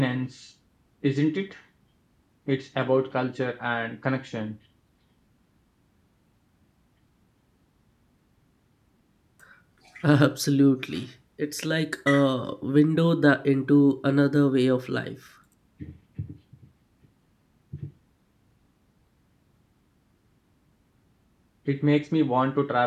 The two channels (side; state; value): both; identical; correlation 1.00